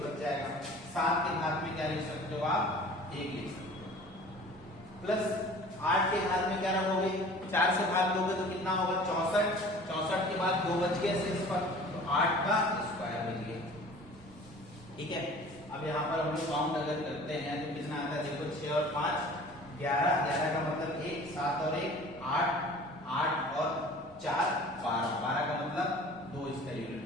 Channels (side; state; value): both; normal; correlation 0.45